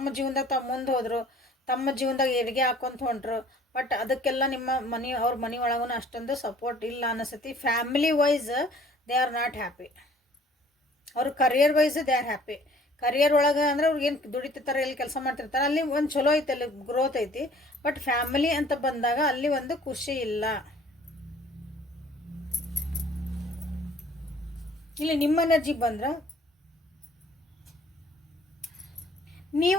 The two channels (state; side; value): normal; both; correlation 0.54